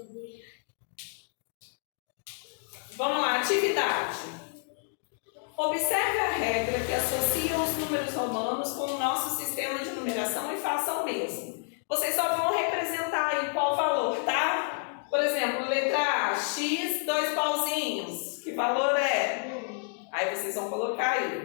Vamos lá, atividade. Observe a regra que associa os números romanos com o nosso sistema de numeração e faça o mesmo. Vocês só vão representar aí qual valor, tá? Por exemplo, letra A, X, 2 pauzinhos. Que valor é? Aí vocês vão colocar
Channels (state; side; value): silent; right; 57 dB below the other